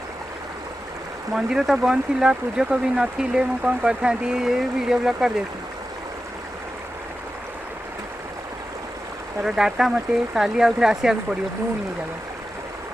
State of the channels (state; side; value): normal; both; correlation 0.92